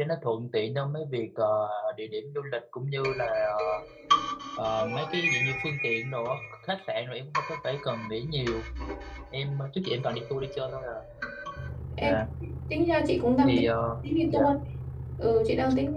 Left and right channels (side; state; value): both; identical; correlation 1.00